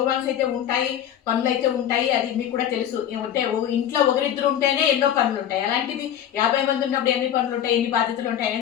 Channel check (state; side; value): quieter; right; 10.3 dB